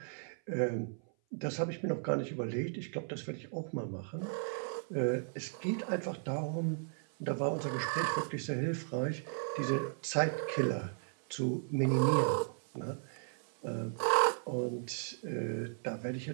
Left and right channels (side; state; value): left; silent; 54 dB below the other